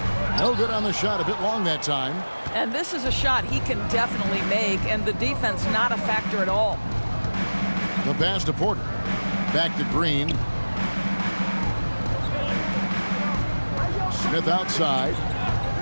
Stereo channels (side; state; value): both; inverted; correlation -1.00